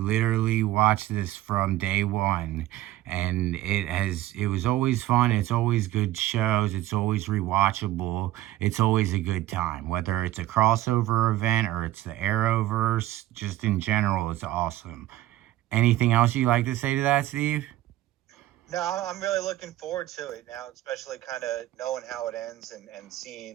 watched this from day one, and it was always fun. It's always good shows. It's always rewatchable. It's always a good time, whether it's a crossover event or it's the Arrowverse. Just in general, it's awesome. Anything else you'd like to say to that, Steve? No, I'm really looking forward to it now, especially kind of knowing how it ends and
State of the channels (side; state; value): left; quieter; 15.1 dB